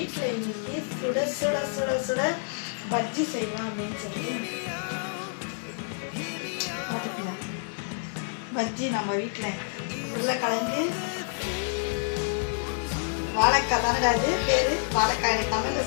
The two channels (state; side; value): silent; right; digital silence